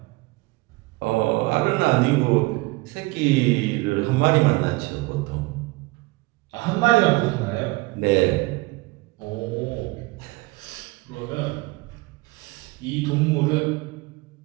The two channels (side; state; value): left; quieter; 23.2 dB